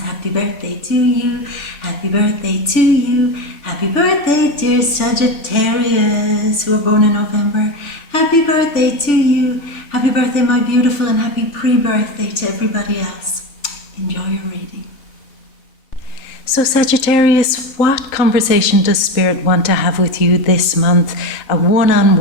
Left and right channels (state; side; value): late; right; 3.8 ms